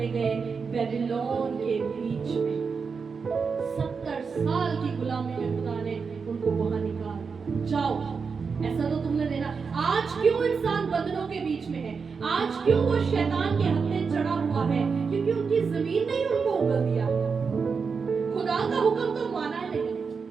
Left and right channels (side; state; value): left; quieter; 5.4 dB